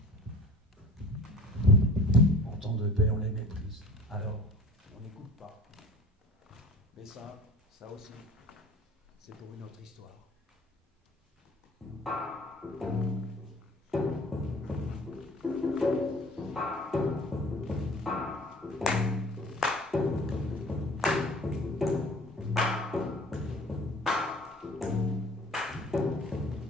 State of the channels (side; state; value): both; normal; correlation 0.45